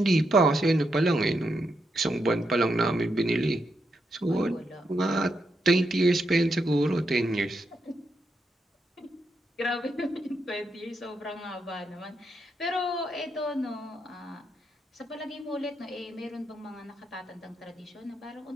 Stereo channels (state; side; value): normal; both; correlation 0.82